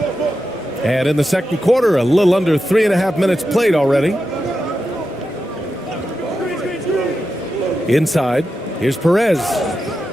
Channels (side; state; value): both; normal; correlation 0.89